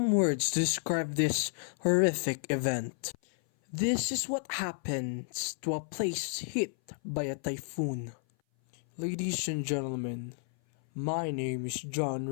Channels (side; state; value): right; silent; 57 dB below the other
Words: words to describe this horrific event. This is what happens to a place hit by a typhoon. Ladies and gentlemen, my name is John